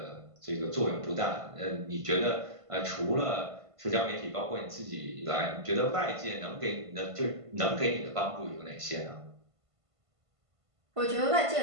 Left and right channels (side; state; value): left; late; 1.5 ms